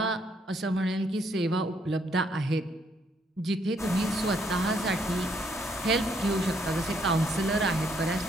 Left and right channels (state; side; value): normal; both; correlation 0.70